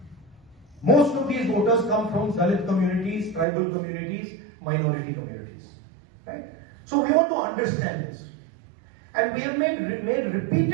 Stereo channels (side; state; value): left; drops out; at 3.5 s